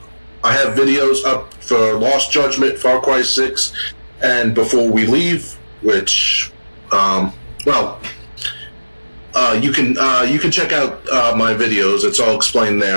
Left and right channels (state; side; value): inverted; both; correlation -1.00